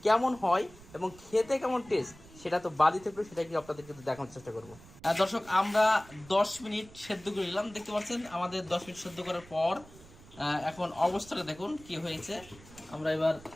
কেমন হয় এবং খেতে কেমন টেস্ট সেটা তো বাদি থাকবে, সেটা কি আপনাদেরকে দেখানোর চেষ্টা করবো। দর্শক আমরা 10 মিনিট সেদ্ধ করে নিলাম, দেখতে পাচ্ছেন আমাদের 10 মিনিট সেদ্ধ করার পর এখন অবস্থাটা দেখুন কি হয়েছে। আমরা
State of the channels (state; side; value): noise; right; rumble, 21 dB below the sound